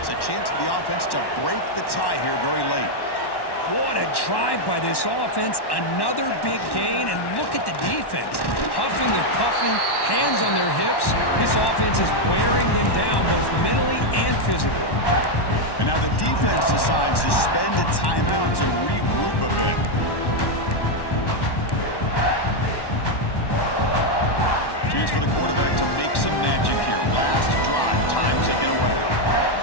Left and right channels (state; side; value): late; right; 1.1 ms